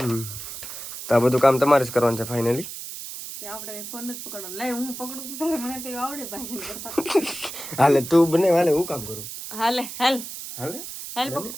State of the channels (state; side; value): noise; right; hiss, 9 dB below the sound